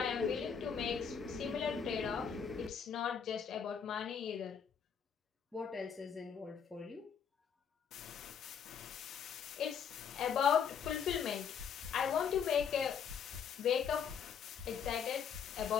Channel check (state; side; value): quieter; right; 7.2 dB